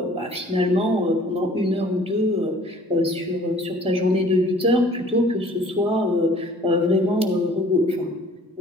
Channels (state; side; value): normal; both; correlation 0.53